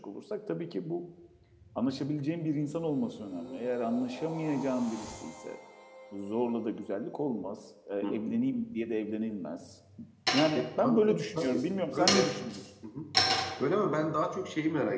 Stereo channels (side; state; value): both; identical; correlation 1.00